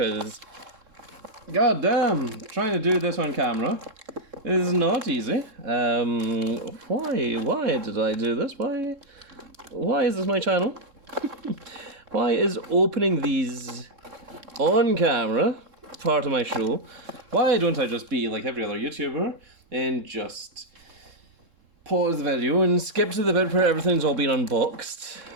god damn, trying to do this on camera is not easy. Why did I do this? Why is this my channel? Why is opening these on camera part of my show? Why don't I just be like every other YouTuber and just pause the video and skip to the bit where everything's all been unboxed?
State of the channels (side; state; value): left; late; 3.7 ms